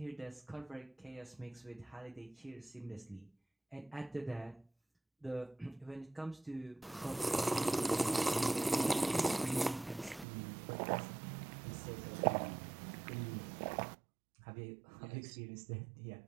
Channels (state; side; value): drops out; left; at 10.2 s